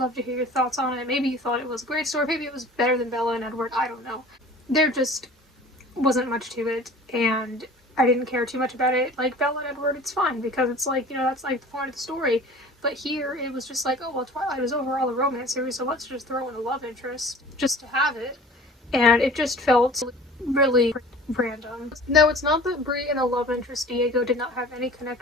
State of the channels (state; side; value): normal; both; correlation 0.44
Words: to hear your thoughts on it. Maybe you thought it was a great story, maybe it was better than Bella and Edward, I don't know. There just wasn't much to it, and I didn't care too much about it. Like Bella and Edward, it's fine, because it's like, that's like the point of the story. But here, it was just like, oh, well, Twilight was overall a romance series, so let's just throw in a love interest just to have it. And it just felt really random. No, it's not that Bree and the love interest Diego did not have any